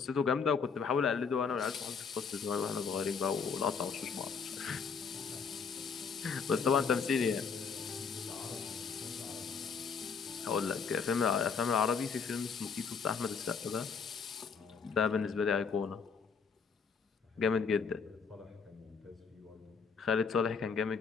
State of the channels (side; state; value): right; quieter; 5.8 dB